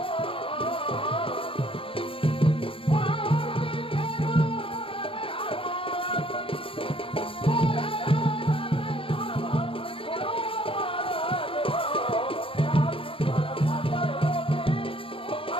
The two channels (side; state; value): right; late; 0.26 ms